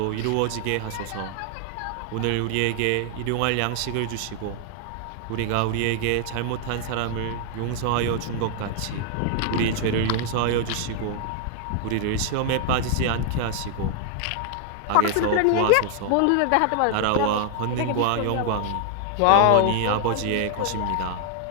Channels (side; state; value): both; different; correlation 0.00